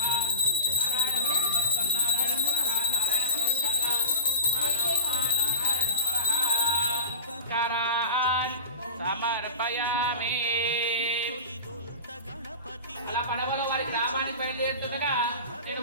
సమర్పయామి. అలా పడవలో వారి గ్రామానికి బయలుదేరుతుండగా నేను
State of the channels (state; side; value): inverted; both; correlation -0.35